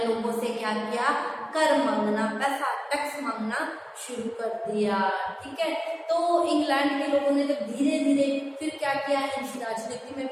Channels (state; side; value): identical; both; correlation 1.00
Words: लोगों से क्या किया, कर मांगना, पैसा टैक्स मांगना शुरू कर दिया। ठीक है, तो इंग्लैंड के लोगों ने जब धीरे धीरे फिर क्या किया, इनकी राजनीति में